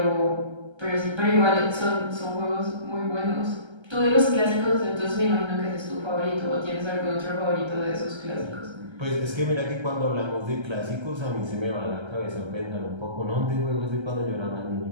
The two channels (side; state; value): left; late; 1.3 ms